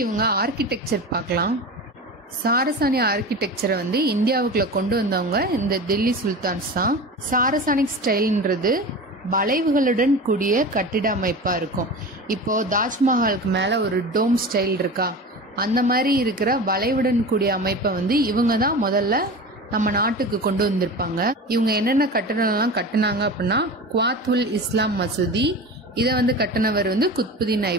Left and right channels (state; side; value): normal; both; correlation 0.31